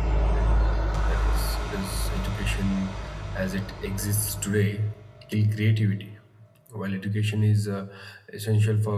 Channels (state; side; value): identical; both; correlation 1.00